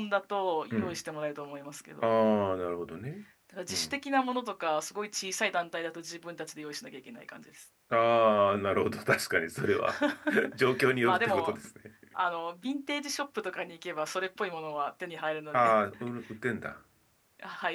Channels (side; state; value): both; identical; correlation 1.00